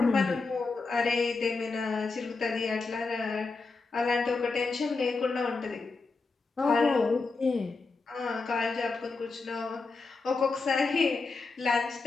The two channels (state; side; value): quieter; right; 4.0 dB